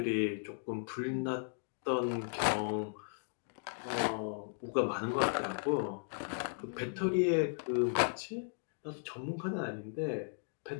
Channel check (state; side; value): silent; right; digital silence